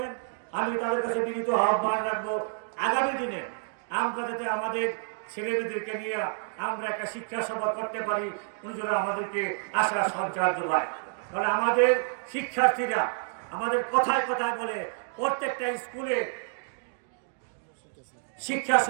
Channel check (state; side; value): silent; left; digital silence